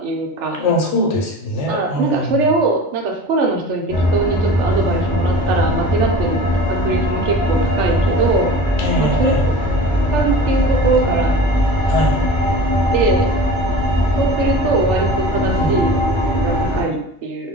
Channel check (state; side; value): normal; both; correlation 0.37